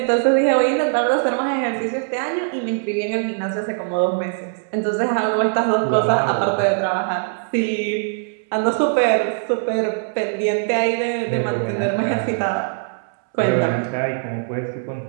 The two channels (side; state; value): left; silent; 65 dB below the other